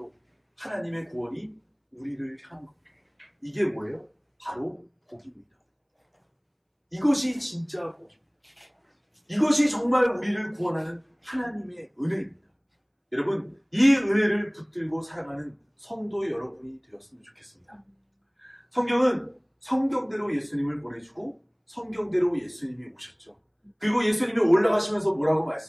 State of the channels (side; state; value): both; identical; correlation 1.00